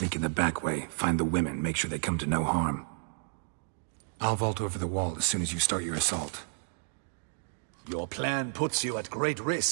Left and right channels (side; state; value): left; silent; digital silence